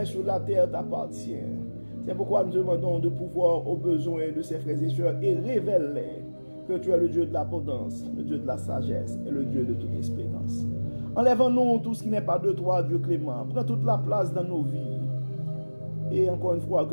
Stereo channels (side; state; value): both; inverted; correlation -1.00